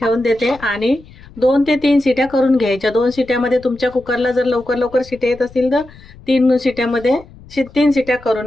देते आणि 2 ते 3 शिट्या करून घ्यायच्या. 2 शिट्यामध्ये तुमच्या कुकरला जर लवकर लवकर शिट्या येत असतील तर 3 शिट्यामध्ये 3 शिट्या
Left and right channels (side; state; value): left; noise; rumble, 22 dB below the sound